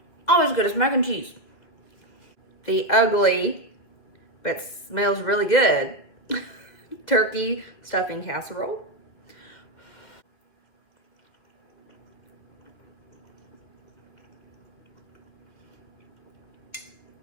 Always good as mac and cheese. The ugly, but smells really good, turkey stuffing casserole.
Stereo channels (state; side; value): late; right; 2.3 ms